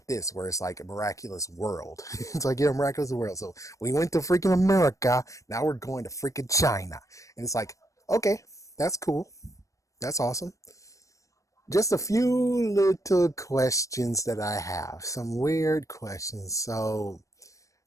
this, where it's like a miraculous world. It's like, yeah, miraculous world. So we went to freaking America. Now we're going to freaking China. And it's like, okay, that's cool. That's awesome. Just a few little questions that I have. Some weird questions. So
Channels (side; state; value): right; late; 0.16 ms